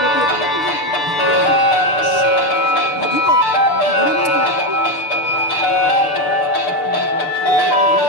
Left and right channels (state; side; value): late; right; 6.8 ms